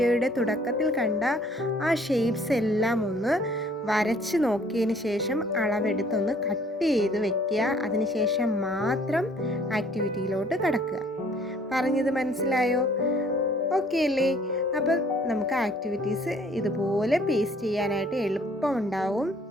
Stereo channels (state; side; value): normal; both; correlation 0.58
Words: തുടക്കത്തിൽ കണ്ട ആ ഷേപ്സ് എല്ലാം ഒന്ന് വരച്ച് നോക്കിയതിന് ശേഷം അളവെടുത്തൊന്ന് കട്ട് ചെയ്ത് വെക്കുക. അതിനുശേഷം മാത്രം ആക്ടിവിറ്റിയിലോട്ട് കടക്കുക. പറഞ്ഞത് മനസ്സിലായോ? ഓക്കെ അല്ലേ? അപ്പം നമുക്ക് ആക്ടിവിറ്റീസ് ഇതുപോലെ പേസ്റ്റ് ചെയ്യാനായിട്ട് എളുപ്പമുണ്ടാവും.